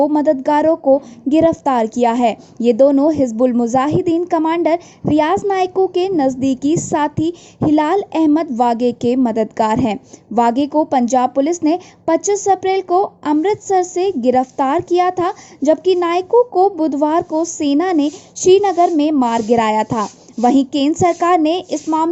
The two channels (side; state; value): both; identical; correlation 1.00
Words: मददगारों को गिरफ्तार किया है। ये दोनों हिजबुल मुजाहिदीन कमांडर रियाज नायको के नज़दीकी साथी हिलाल अहमद वागे के मददगार हैं। वागे को पंजाब पुलिस ने 25 अप्रैल को अमृतसर से गिरफ्तार किया था, जबकि नायको को बुधवार को सेना ने श्रीनगर में मार गिराया था। वहीं केंद्र सरकार ने इस